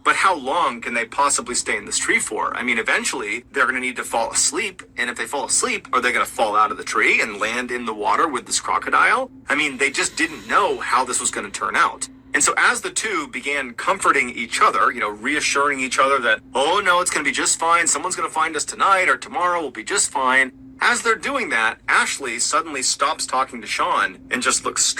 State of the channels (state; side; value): identical; both; correlation 1.00